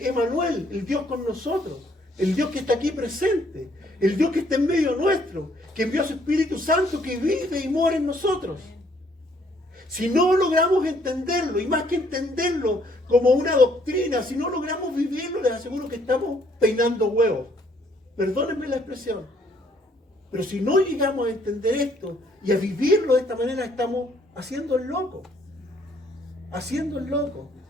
Emanuel, el Dios con nosotros. El Dios que está aquí presente. El Dios que está en medio nuestro. Que envió a su Espíritu Santo que vive y mora en nosotros. Si no logramos entenderlo, y más que entenderlo como una doctrina, si no logramos vivirlo, les aseguro que estamos peinando huevos. Perdónenme la expresión. Pero si no llegamos a entender esto y a vivirlo de esta manera, estamos haciendo el loco. Haciendo el loco.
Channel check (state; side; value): normal; both; correlation 0.65